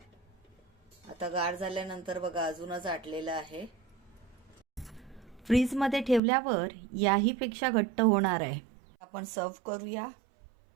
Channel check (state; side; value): drops out; left; at 6.2 s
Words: आता गार झाल्यानंतर बघा अजूनच आटलेलं आहे। फ्रीजमध्ये ठेवल्यावर याही पेक्षा घट्ट होणार आहे. आपण सर्व करूया.